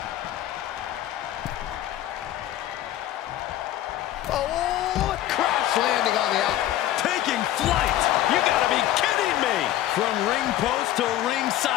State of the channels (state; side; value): quieter; right; 13.2 dB